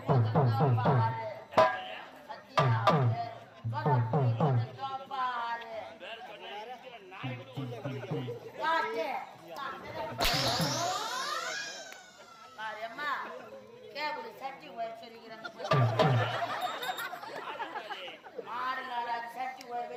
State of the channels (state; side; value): identical; both; correlation 1.00